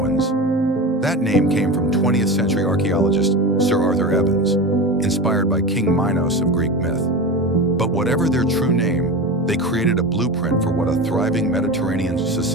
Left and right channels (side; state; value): both; normal; correlation 0.26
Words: That name came from 20th century archaeologist Sir Arthur Evans, inspired by King Minos of Greek myth. But whatever their true name, they created a blueprint for what a thriving Mediterranean